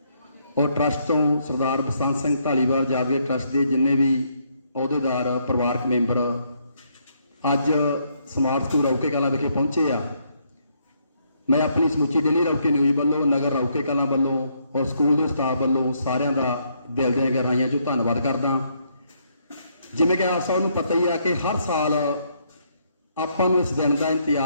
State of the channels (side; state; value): both; inverted; correlation -0.72